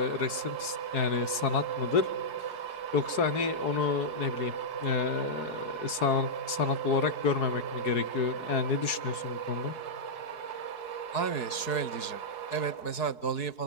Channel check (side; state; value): right; late; 4.7 ms